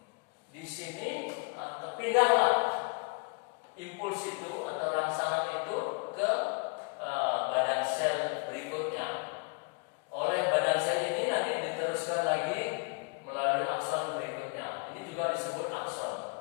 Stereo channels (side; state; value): right; quieter; 38.0 dB